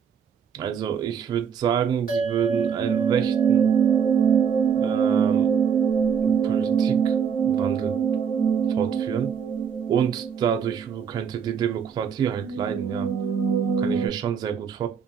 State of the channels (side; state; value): left; quieter; 7.3 dB